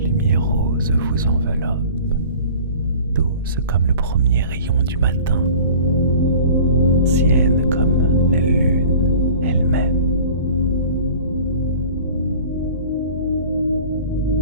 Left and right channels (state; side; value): inverted; both; correlation -0.44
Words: lumière rose vous enveloppe,